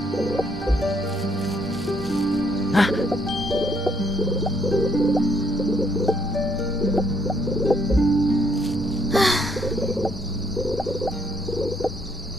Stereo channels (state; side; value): normal; both; correlation 0.71